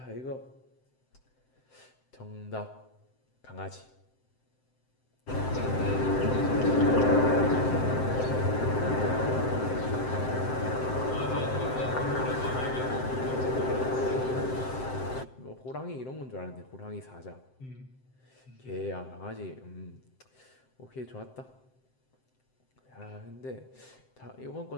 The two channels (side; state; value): right; late; 7.7 ms